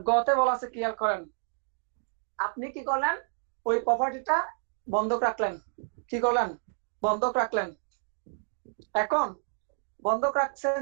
গতে বলা আছে, ক্লিয়ার করেন, আপনি কি করলেন, ওই প্রপার্টিটা বন্ধক রাখলেন, কি করলেন, বন্ধক রাখলেন। এখন বন্ধক রাখছেন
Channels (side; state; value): left; silent; 58 dB below the other